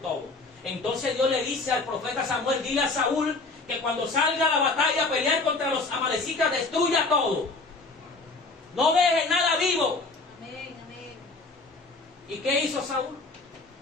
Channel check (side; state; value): right; quieter; 3.6 dB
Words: Entonces Dios le dice al profeta Samuel: dile a Saúl que cuando salga a la batalla a pelear contra los amalecitas, destruya todo. No deje nada vivo. Amén, amén. ¿Y qué hizo Saúl?